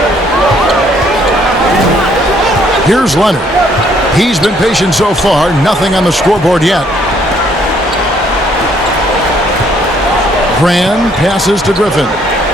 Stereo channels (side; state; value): both; normal; correlation 0.65